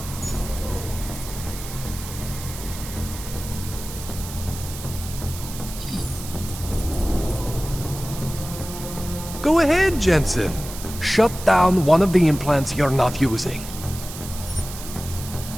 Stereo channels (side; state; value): right; noise; hiss, 12 dB below the sound